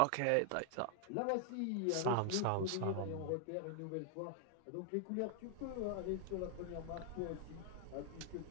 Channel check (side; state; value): both; different; correlation 0.00